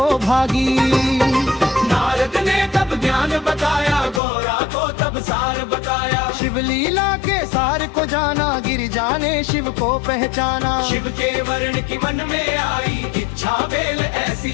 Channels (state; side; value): drops out; right; at 4.2 s